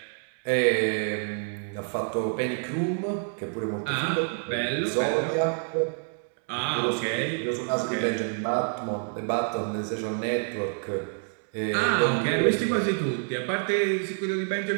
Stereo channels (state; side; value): silent; left; 59 dB below the other